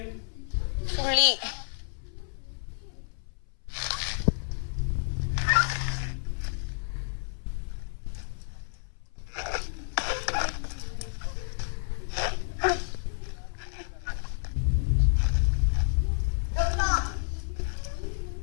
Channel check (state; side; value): silent; right; 58 dB below the other